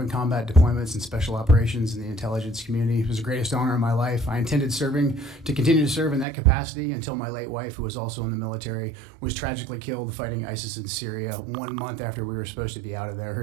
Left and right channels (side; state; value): left; drops out; at 6.2 s